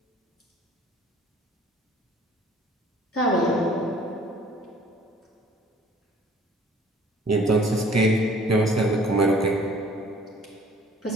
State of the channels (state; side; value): normal; both; correlation 0.53